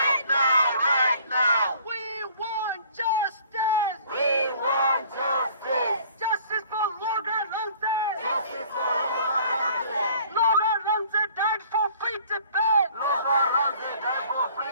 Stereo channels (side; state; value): both; inverted; correlation -0.53